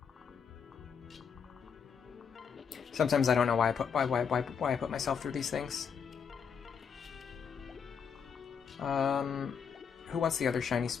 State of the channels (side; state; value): right; quieter; 6.8 dB